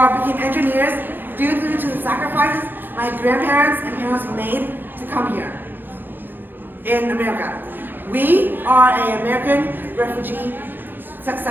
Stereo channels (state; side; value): late; left; 0.093 ms